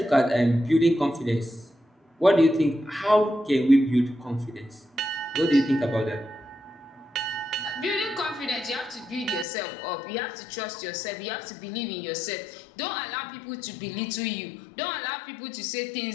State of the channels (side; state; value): right; drops out; at 9.5 s